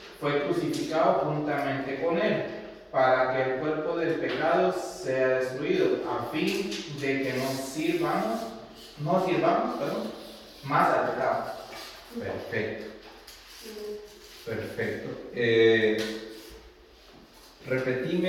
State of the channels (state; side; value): identical; both; correlation 1.00